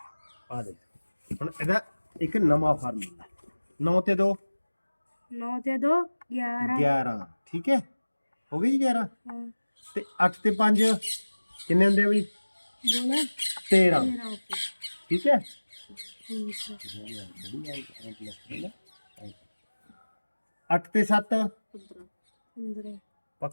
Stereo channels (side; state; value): both; inverted; correlation -1.00